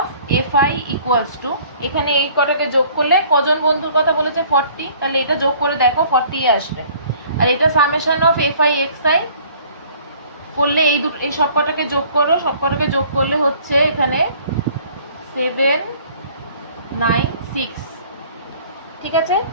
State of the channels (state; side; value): inverted; both; correlation -0.54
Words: FI equals to, এখানে এই কটাকে যোগ করলে, কজন বন্ধুর কথা বলেছে 40, তাহলে এটা যোগ করে দেখো 40 আসবে। আর এটা সামেশন অফ এফআই এক্সআই করলে এই সব কটাকে যোগ করো, সব কটাকে যোগ করলে হচ্ছে এখানে 796, ঠিক আছে।